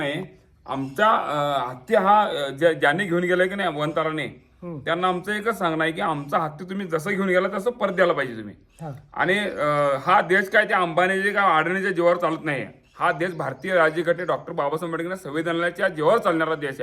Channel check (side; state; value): both; identical; correlation 1.00